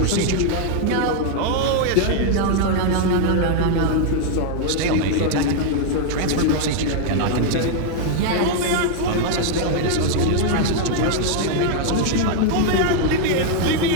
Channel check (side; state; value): both; different; correlation 0.00